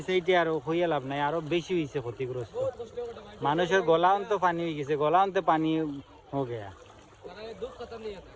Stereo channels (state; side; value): identical; both; correlation 1.00